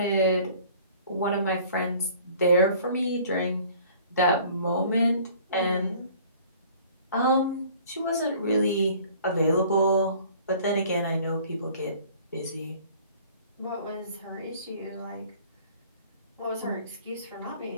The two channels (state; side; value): inverted; both; correlation -0.51